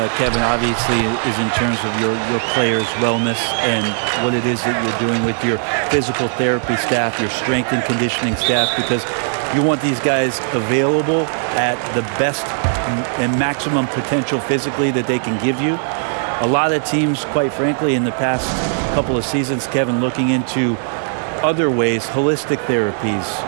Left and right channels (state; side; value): silent; left; digital silence